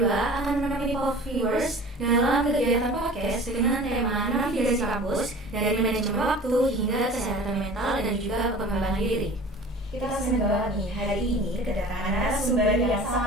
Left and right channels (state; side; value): normal; both; correlation 0.42